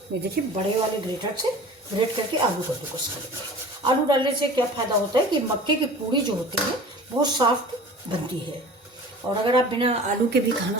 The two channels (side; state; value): both; normal; correlation 0.41